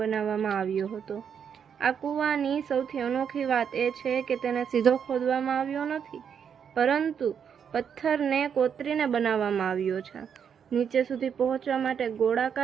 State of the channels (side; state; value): left; quieter; 7.6 dB